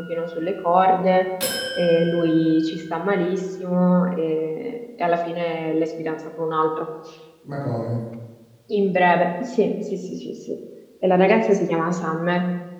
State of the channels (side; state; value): both; identical; correlation 1.00